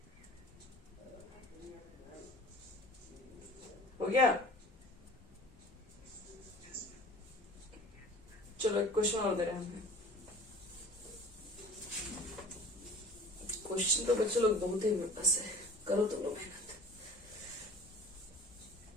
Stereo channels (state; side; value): normal; both; correlation 0.44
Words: हो गया। चलो एक क्वेश्चन और दे रहे हैं हमें। क्वेश्चन तो बच्चे लोग बहुत ही मेरे पास है, करो तुम लोग मेहनत।